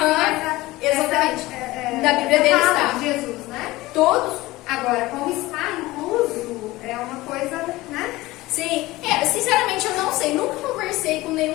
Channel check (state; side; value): quieter; right; 19.1 dB